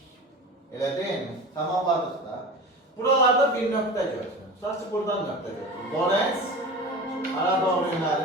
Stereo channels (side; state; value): both; normal; correlation 0.33